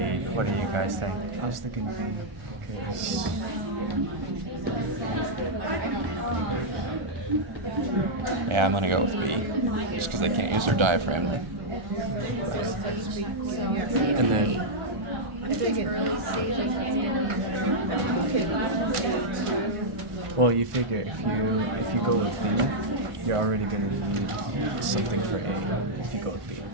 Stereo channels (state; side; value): late; left; 1.4 ms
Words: What do you guys think? I was thinking B. Because Yeah, I'm gonna go with B, just because they can't use their diaphragm. and then well, you figure if you go with B, you're already gonna need something for A. If you go with B,